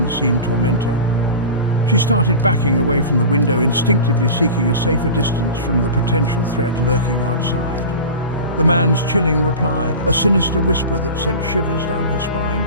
tormentor. She started backing away from the window, instinctively seeking a safer distance from the potential threat lurking outside. The man's chilling reply, a sinister whisper that sent shivers down her spine.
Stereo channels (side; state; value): both; inverted; correlation -0.32